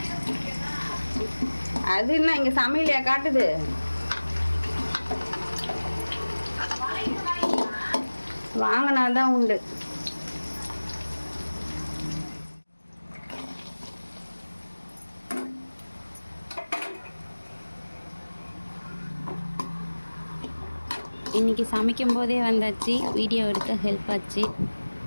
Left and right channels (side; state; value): both; inverted; correlation -1.00